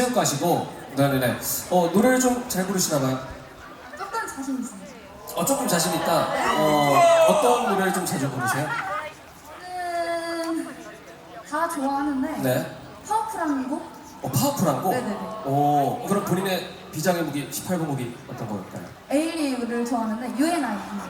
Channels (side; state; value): both; identical; correlation 1.00